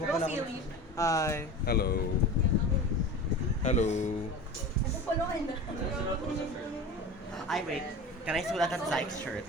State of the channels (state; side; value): normal; both; correlation 0.33